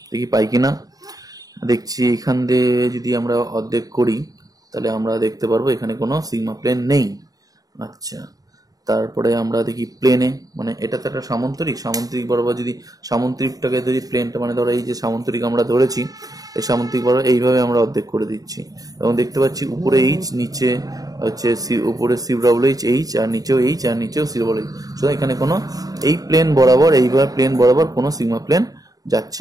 দেখি পাই কিনা। দেখছি এখান দিয়ে যদি আমরা অর্ধেক করি তাহলে আমরা দেখতে পারবো এখানে কোনো সিগমা প্লেন নেই। আচ্ছা, তারপরে আমরা দেখি প্লেনে, মানে এটা তো একটা সামন্তরিক বরাবর যদি সামন্তরিকটাকে যদি প্লেনটা, মানে ধরো এই যে সামন্তরিক আমরা ধরেছি, এই সামন্তরিক বরাবর এইভাবে আমরা অর্ধেক করে দিচ্ছি, এবং দেখতে পাচ্ছি উপরে H, নিচে হচ্ছে উপরে CH, আর নিচেও H, আর নিচেও CH। সুতরাং এখানে কোনো এই প্লেন বরাবর, এইভাবে প্লেন বরাবর কোনো সিগমা প্লেন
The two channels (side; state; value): left; late; 0.18 ms